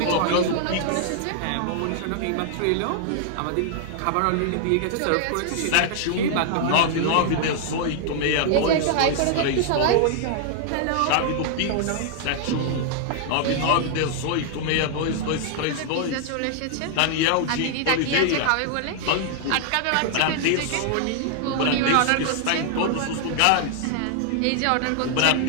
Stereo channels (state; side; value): different; both; correlation -0.01